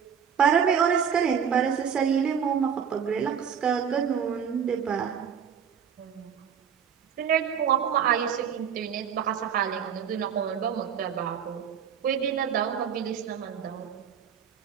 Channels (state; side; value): quieter; left; 7.6 dB